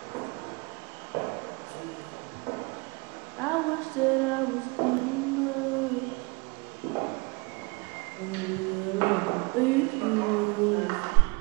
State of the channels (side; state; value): left; quieter; 27.8 dB